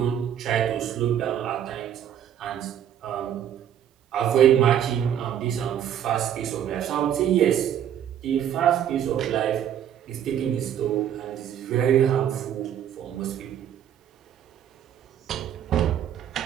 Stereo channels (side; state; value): left; quieter; 9.9 dB